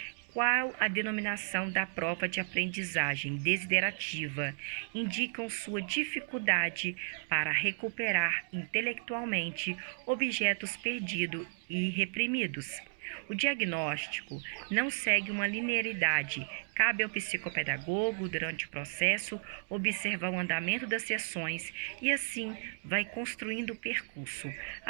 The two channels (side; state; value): left; silent; digital silence